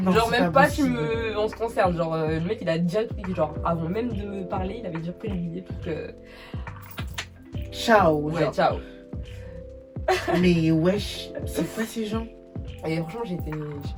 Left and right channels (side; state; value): both; identical; correlation 1.00